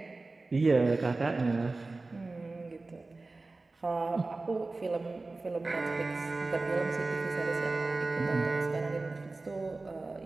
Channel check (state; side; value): quieter; left; 3.4 dB